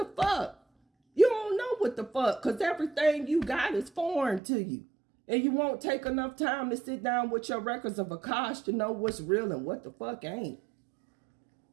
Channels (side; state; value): left; drops out; at 4.4 s